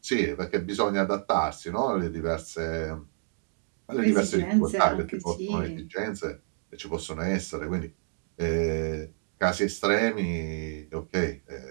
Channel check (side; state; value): left; silent; 59 dB below the other